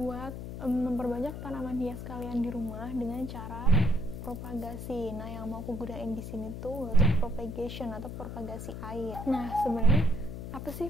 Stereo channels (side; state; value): left; noise; hum, 7 dB below the sound